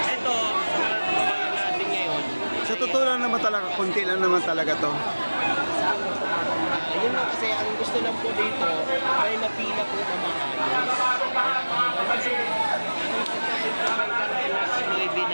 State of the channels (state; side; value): inverted; both; correlation -1.00